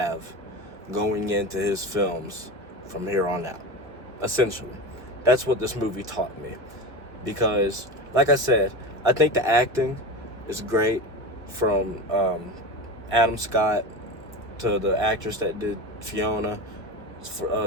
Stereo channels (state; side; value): normal; both; correlation 0.25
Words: going into his films from here on out. Essentially, that's what this movie taught me. Because, like I said, I think the acting is great from Adam Scott to the actress that did Fiona.